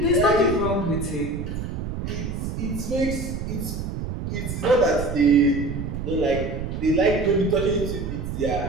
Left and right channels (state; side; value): noise; right; rumble, 5 dB below the sound